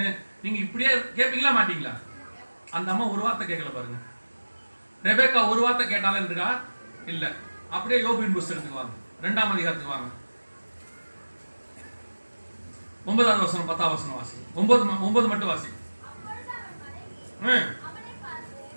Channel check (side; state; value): both; inverted; correlation -1.00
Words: நீங்க இப்படியே கேட்பீங்களா மாட்டீங்களா? அந்த அம்மா ஒரு வார்த்தை கேட்கல பாருங்க. ரெபேக்கா ஒரு வார்த்தை கேட்டாலும் இருக்கா? இல்ல. அப்படியே யோபின் புஸ்தகத்துக்கு வாங்க, 2ஆம் அதிகாரத்துக்கு வாங்க. 9வது வசனம் 10வது வசனம் வாசி. 9 மட்டும் வாசி.